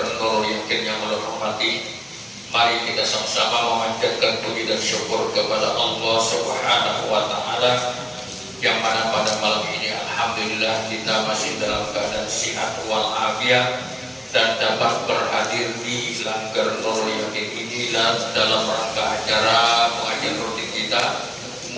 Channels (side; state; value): both; identical; correlation 1.00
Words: Nurul Yakin yang menghormati, mari kita sama-sama memanjatkan puji dan syukur kepada Allah Subhanahu wa taala yang mana pada malam ini alhamdulillah kita masih dalam keadaan sehat wal afiat dan dapat berhadir di Langgar Nurul Yakin ini dalam rangka acara pengajian rutin kita.